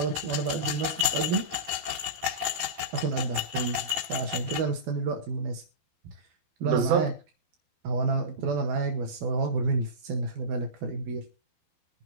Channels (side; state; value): left; late; 12 ms